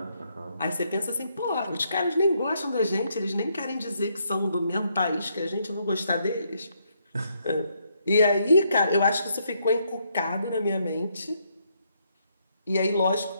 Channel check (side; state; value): both; inverted; correlation -0.74